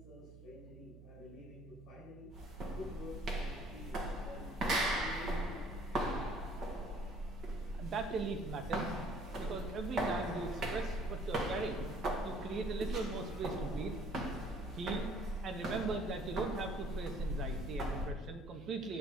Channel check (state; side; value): noise; right; hum, 17 dB below the sound